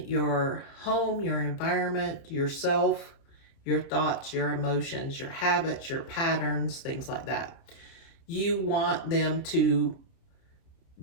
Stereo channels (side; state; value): right; late; 30 ms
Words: your home, your environment, yourself, your thoughts, your emotions, your habits, your patterns, things like that. You want them to